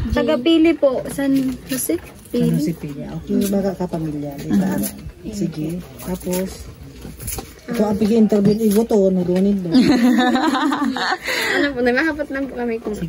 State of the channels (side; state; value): both; identical; correlation 1.00